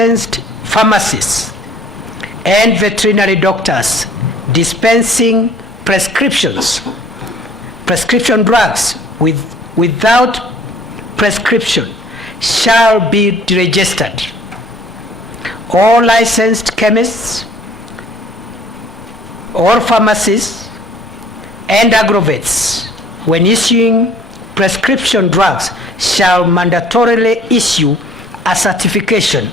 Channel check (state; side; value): normal; both; correlation 0.54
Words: pharmacists and veterinary doctors dispensing prescription drugs without prescription shall be deregistered. All licensed chemists or pharmacists and aggrovests, when issuing prescription drugs, shall mandatorily issue a certification